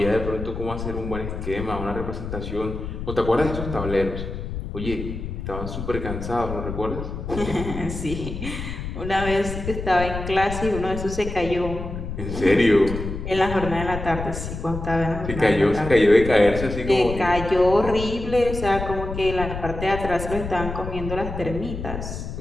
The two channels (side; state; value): left; noise; rumble, 7 dB below the sound